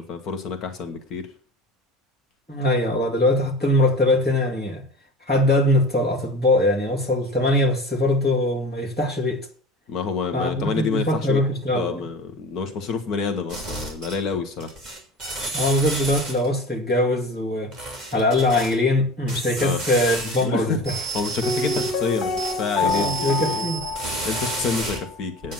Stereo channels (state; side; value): normal; both; correlation 0.36